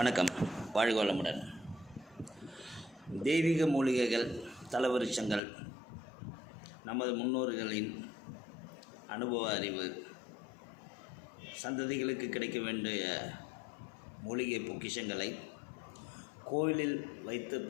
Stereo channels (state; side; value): drops out; right; at 5.4 s